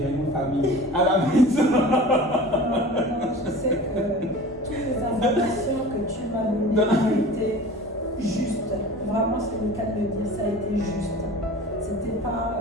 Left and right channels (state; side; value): normal; both; correlation 0.39